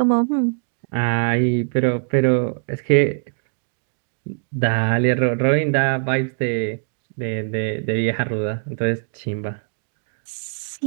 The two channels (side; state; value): left; silent; digital silence